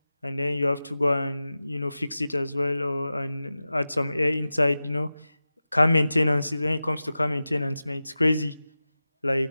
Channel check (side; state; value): both; inverted; correlation -0.95